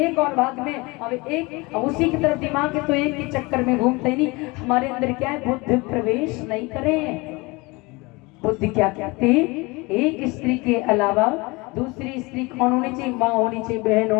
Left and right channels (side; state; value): right; quieter; 24.9 dB